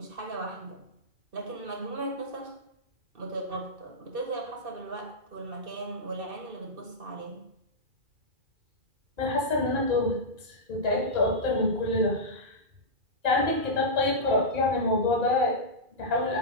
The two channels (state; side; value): late; left; 2.4 ms